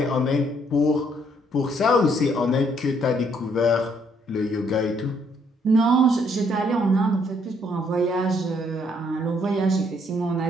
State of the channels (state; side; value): normal; both; correlation 0.68